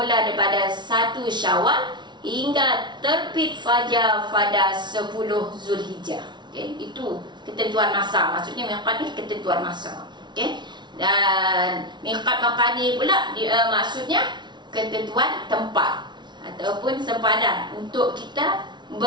daripada 1 Syawal hingga terbit fajar pada 10 Zulhijjah. Okay. Itu ketentuan masa, maksudnya miqat ni ketentuan masa. Okay. Dan miqat makani pula maksudnya ketentuan tempat ataupun sempadan untuk kita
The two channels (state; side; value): late; left; 0.21 ms